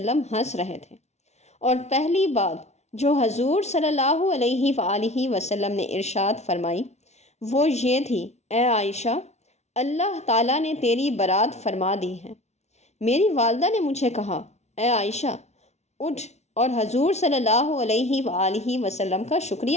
ہنس رہے تھے، اور پہلی بات جو حضور صلی اللہ علیہ وآلہ وسلم نے ارشاد فرمائی وہ یہ تھی، اے عائشہ، اللہ تعالیٰ نے تیری برات فرما دی ہے۔ میری والدہ نے مجھے کہا، اے عائشہ، اٹھ اور حضور صلی اللہ علیہ وآلہ وسلم کا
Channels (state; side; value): late; right; 0.32 ms